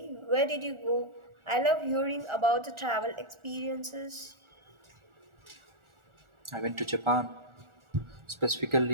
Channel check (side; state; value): left; late; 1.4 ms